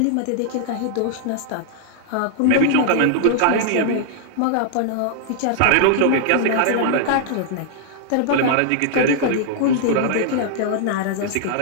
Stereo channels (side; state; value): both; different; correlation -0.01